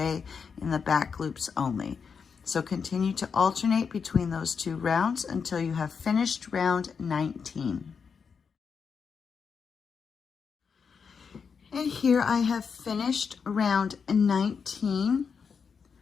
in the back loops only. So continue to alternate between those two rounds until you have finished round 19. And here I have finished round 19.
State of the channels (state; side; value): quieter; right; 6.0 dB